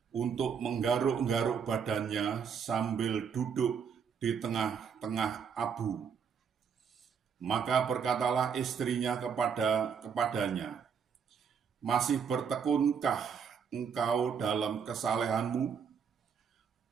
untuk menggaruk-garuk badannya sambil duduk di tengah-tengah abu. Maka berkatalah istrinya kepadanya, "Masih bertekunkah engkau dalam kesalehanmu?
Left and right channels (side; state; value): left; quieter; 6.8 dB